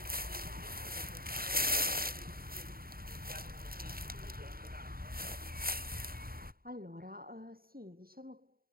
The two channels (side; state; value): left; late; 0.43 ms